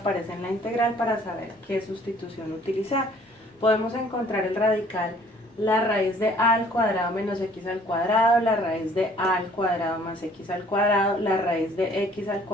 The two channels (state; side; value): normal; both; correlation 0.57